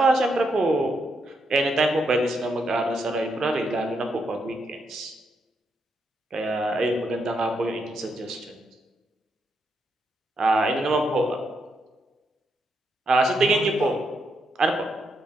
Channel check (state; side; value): normal; both; correlation 0.80